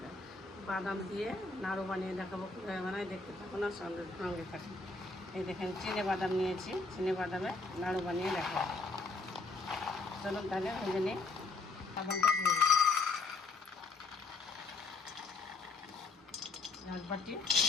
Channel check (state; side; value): quieter; right; 3.8 dB